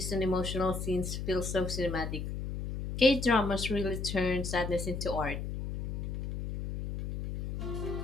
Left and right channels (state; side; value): noise; left; hum, 5 dB below the sound